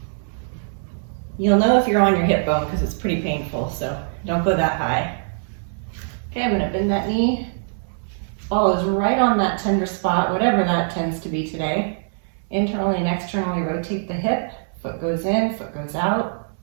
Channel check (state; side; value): silent; left; 64 dB below the other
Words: You'll know if you're on your hip bone because it's pretty painful, so don't go that high. Okay, I'm gonna bend that knee. Ball is right on that tender spot, whatever that tends to be today. Internally and externally rotate the hip. Foot goes in, foot goes out.